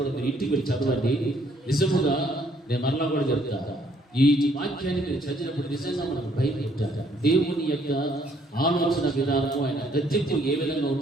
మీరు ఇంటికి వెళ్ళి చదవండి. నిజముగా నేను మరలా కూడా చెప్తాను, ఈ వాక్యాన్ని మీరు చదివినప్పుడు నిజంగా మనకు భయం పెట్టారు. దేవుని యొక్క ఆలోచన విధానము, ఆయన గద్దింపు ఏ విధంగా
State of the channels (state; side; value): normal; both; correlation 0.66